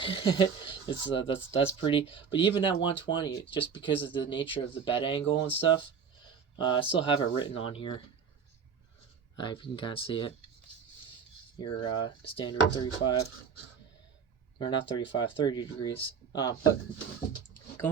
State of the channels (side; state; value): left; quieter; 6.5 dB